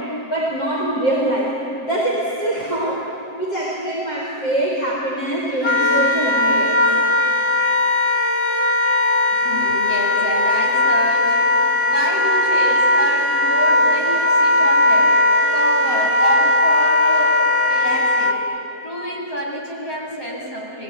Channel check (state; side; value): late; right; 7.7 ms